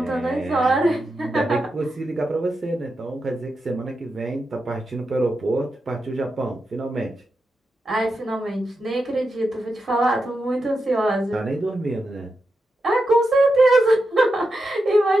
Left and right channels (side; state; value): both; normal; correlation 0.88